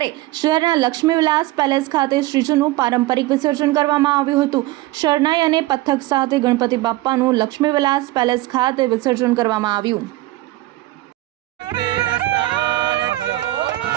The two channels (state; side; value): quieter; left; 18.1 dB